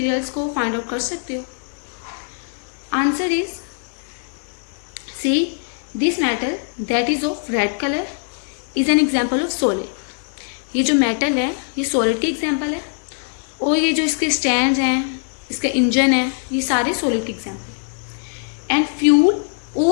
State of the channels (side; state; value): right; silent; 65 dB below the other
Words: को फाइंड आउट कर सकते हो? Answer is C. This metal that is of red colour is an example of solid. ये जो मेटल है ये सॉलिड की एग्जाम्पल है, और ये जो इसके स्टैंड हैं, इसका इंजन है, ये सारे सॉलिड की एग्जाम्पल है. एंड फ्यूल